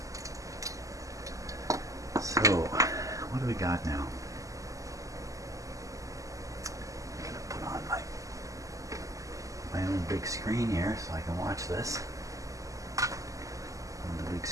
So, what do we got now? I'm going to put on my own big screen here so I can watch this on the big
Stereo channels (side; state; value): left; late; 0.16 ms